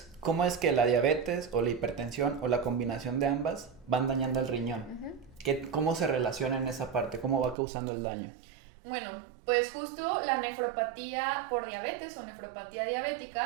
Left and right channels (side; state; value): left; drops out; at 7.6 s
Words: cómo es que la diabetes o la hipertensión o la combinación de ambas van dañando el riñón. ¿Cómo se relaciona en esa parte? ¿Cómo va causando el daño? Bueno, pues justo la nefropatía por diabetes o nefropatía